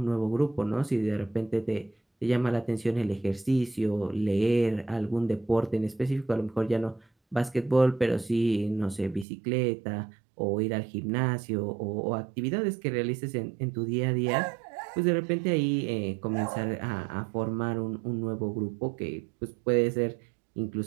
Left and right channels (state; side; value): drops out; left; at 9.2 s